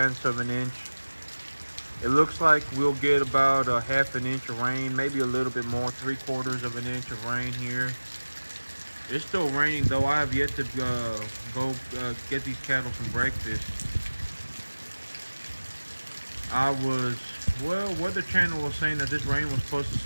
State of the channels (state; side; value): inverted; both; correlation -1.00